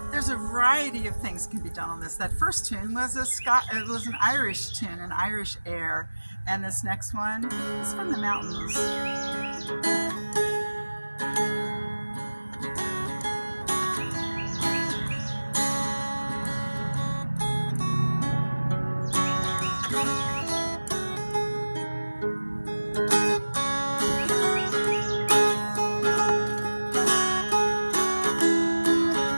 there's a variety of things can be done on this. That first tune was an Irish tune, an Irish air, and this next one is from the mountains.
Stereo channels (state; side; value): inverted; both; correlation -1.00